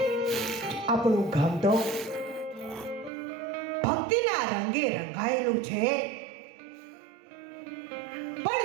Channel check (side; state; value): left; drops out; at 3.1 s